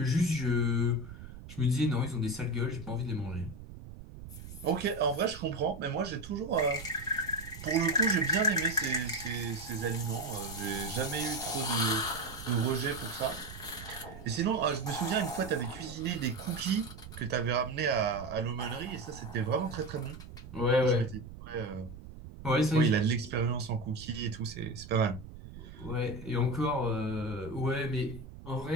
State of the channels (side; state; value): right; noise; rumble, 14 dB below the sound